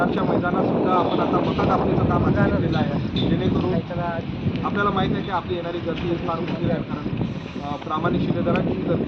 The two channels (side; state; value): both; identical; correlation 1.00